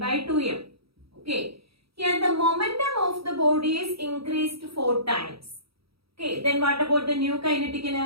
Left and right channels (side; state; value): left; late; 0.76 ms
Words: 2m. Okay, here the momentum of the body is increased 4 times. Okay, then what about the new kinetic